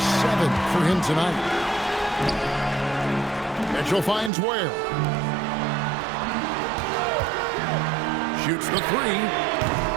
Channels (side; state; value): left; drops out; at 4.3 s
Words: for him tonight. Mitchell finds Ware. Shoots the